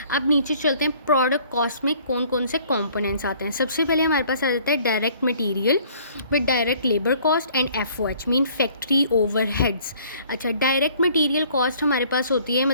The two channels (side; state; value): both; inverted; correlation -0.57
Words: अब नीचे चलते हैं, प्रोडक्ट कॉस्ट में कौन कौन से कंपोनेंट्स आते हैं। सबसे पहले हमारे पास आ जाता है direct material with direct labour cost and FOH mean factory overheads. अच्छा, डायरेक्ट मटीरियल कॉस्ट हमारे पास होती है,